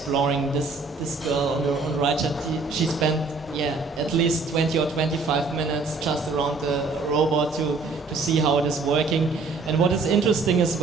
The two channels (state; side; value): quieter; left; 4.0 dB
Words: this girl on the right. She spent at least 20 or 25 minutes just around the robot to see how it is working. And what is interesting as